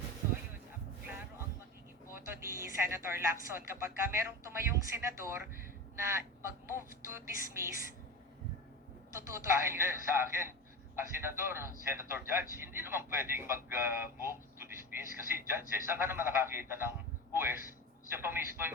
So ayun, klaro ang magiging boto ni Senator Lacson kapag merong tumayong senador na mag-move to dismiss, tututuloy Hindi, sa akin, ang senator judge, hindi naman pwedeng mag-move to dismiss kasi judge, saan ka naman nakakita ng huwes, siya pa mismo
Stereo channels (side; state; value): both; normal; correlation 0.27